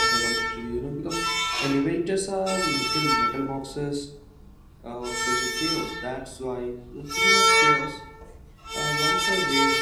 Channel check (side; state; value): both; identical; correlation 1.00